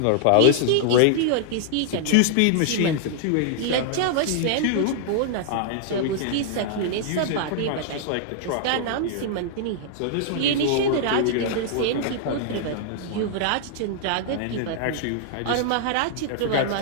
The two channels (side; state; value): both; different; correlation -0.01